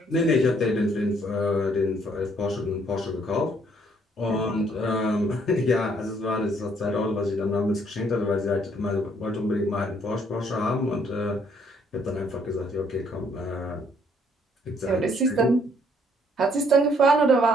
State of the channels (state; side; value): normal; both; correlation 0.66